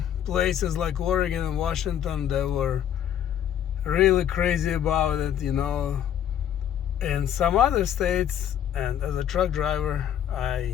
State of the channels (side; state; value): right; quieter; 10.0 dB